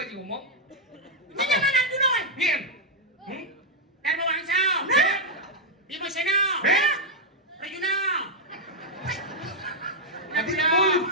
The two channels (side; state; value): both; normal; correlation -0.03